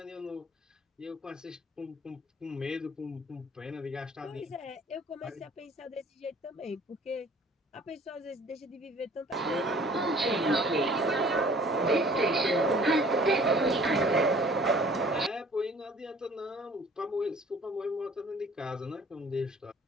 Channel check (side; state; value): both; normal; correlation 0.52